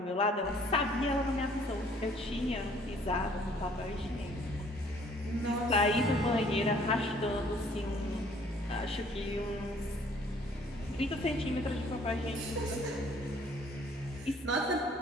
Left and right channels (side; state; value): both; normal; correlation 0.59